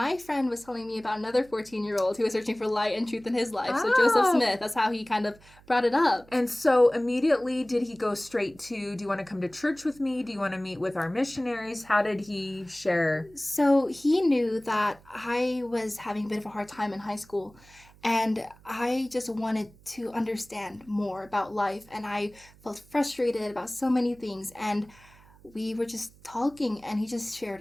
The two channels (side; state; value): right; noise; hum, 25 dB below the sound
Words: friend was telling me about another 14-year-old who was searching for light and truth in his life. So Joseph Smith, that's how he kind of brought it up. And so immediately, did he go straight to, do you want to come to church with me? Do you want to meet with our missionaries? How did he share? So he knew that I was having a bit of a hard time in high school. And I just wanted to understand more about life. And I felt frustrated about so many things. And we were just talking, and he just